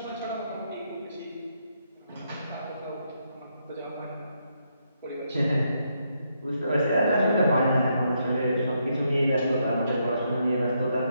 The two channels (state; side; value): inverted; both; correlation -0.78